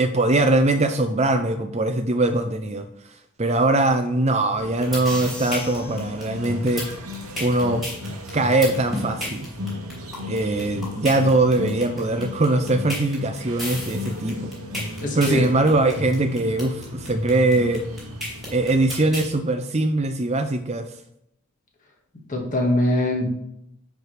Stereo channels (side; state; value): both; normal; correlation 0.43